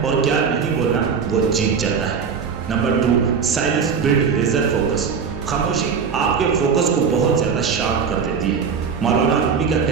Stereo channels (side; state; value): left; quieter; 6.2 dB